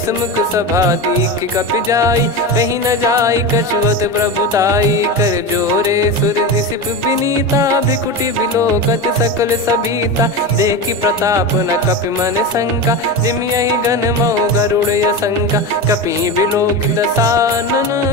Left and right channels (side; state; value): both; normal; correlation 0.21